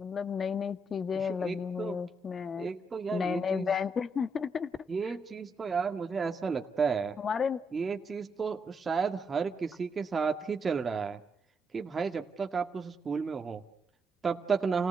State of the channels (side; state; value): both; normal; correlation 0.80